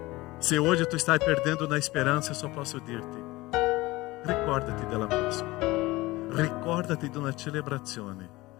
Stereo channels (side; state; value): right; quieter; 20.1 dB